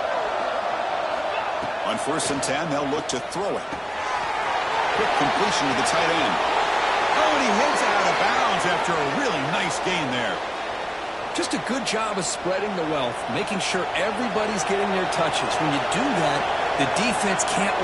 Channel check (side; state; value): both; identical; correlation 1.00